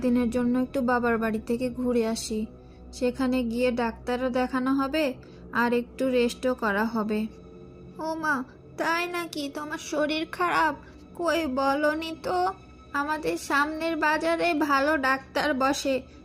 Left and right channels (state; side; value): identical; both; correlation 1.00